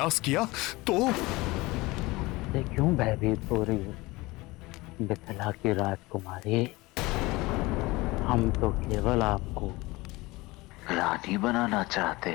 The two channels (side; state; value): right; quieter; 21.7 dB